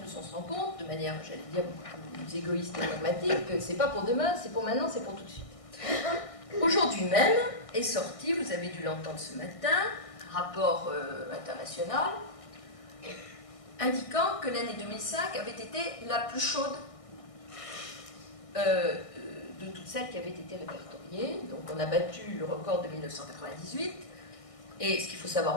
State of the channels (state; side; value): late; right; 1.6 ms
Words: on se rend compte, de manière, j'allais dire, beaucoup plus égoïste et pragmatique, que c'est pas pour demain, c'est pour maintenant, c'est pour tout de suite. Aujourd'hui même est sorti, vous avez dû l'entendre ce matin, un rapport international indiquant que l'année 2005 avait été la plus chaude de toutes celles qui avaient été répertoriées. Donc on a battu le record de 1998. Et ce qu'il faut